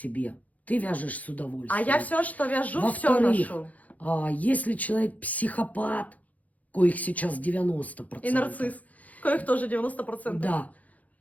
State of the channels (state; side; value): late; right; 0.074 ms